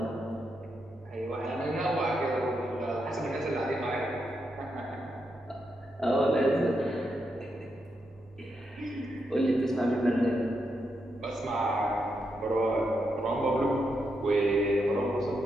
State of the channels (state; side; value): normal; both; correlation 0.83